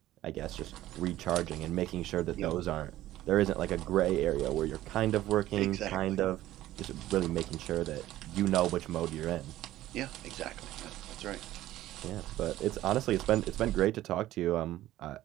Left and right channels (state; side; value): quieter; left; 14.6 dB